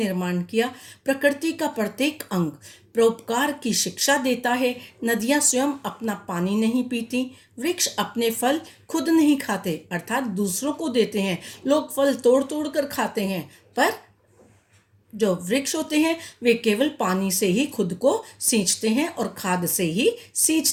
किया, प्रकृति का प्रत्येक अंग परोपकार की शिक्षा देता है। नदियां स्वयं अपना पानी नहीं पीती, वृक्ष अपने फल खुद नहीं खाते, अर्थात दूसरों को देते हैं। लोग फल तोड़ तोड़ कर खाते हैं, पर जो वृक्ष होते हैं वे केवल पानी से ही खुद को सींचते हैं और खाद से ही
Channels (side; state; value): both; identical; correlation 1.00